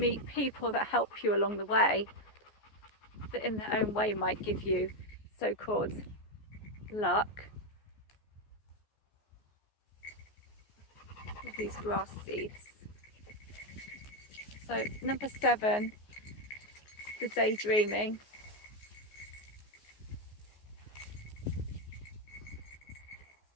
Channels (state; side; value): late; right; 14 ms